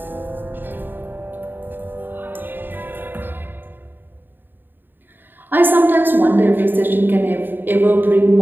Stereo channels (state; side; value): late; left; 0.094 ms